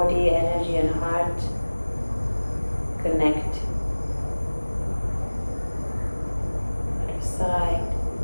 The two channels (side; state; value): both; inverted; correlation -1.00